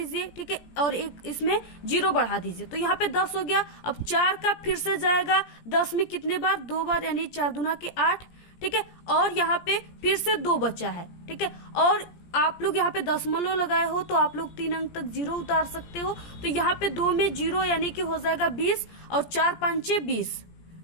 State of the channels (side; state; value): right; late; 17 ms